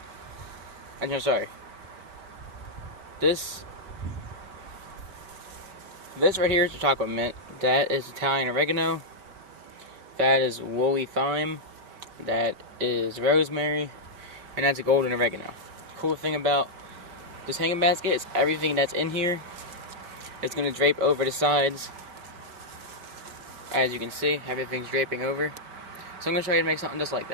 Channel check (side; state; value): left; late; 4.8 ms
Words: This right here is the chocolate mint. That is Italian oregano. That is woolly thyme. That is rosemary, and that's a golden oregano. Cool thing about this hanging basket is everything that's in here is going to drape over the sides. As you can see, everything's draping over. So I'm going to show you how to make something just like